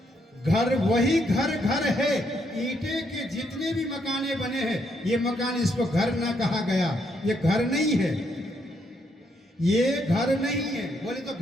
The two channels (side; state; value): both; normal; correlation 0.75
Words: घर वही घर घर है। ईंटे के जितने भी मकाने बने हैं ये मकान, इसको घर ना कहा गया, ये घर नहीं है, ये घर नहीं है। बोले तो